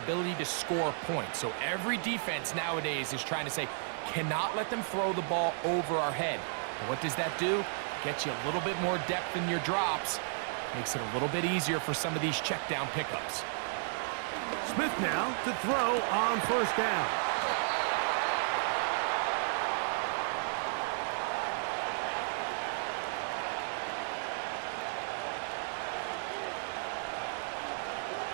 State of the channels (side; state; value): left; silent; digital silence